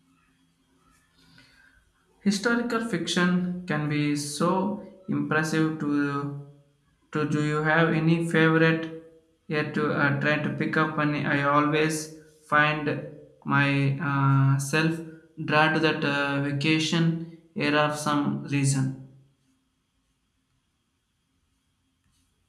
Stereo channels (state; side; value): identical; both; correlation 1.00